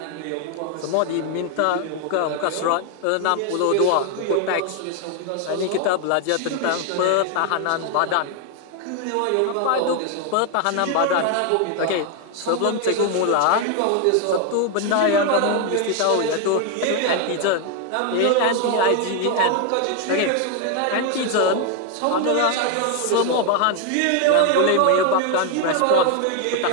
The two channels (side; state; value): both; different; correlation 0.01